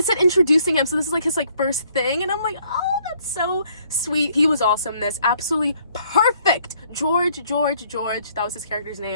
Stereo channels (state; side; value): inverted; both; correlation -0.65